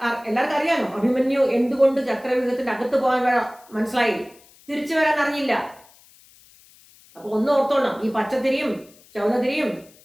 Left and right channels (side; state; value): left; noise; hiss, 27 dB below the sound